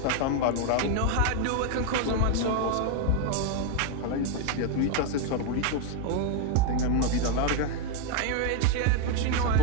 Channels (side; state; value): both; different; correlation 0.02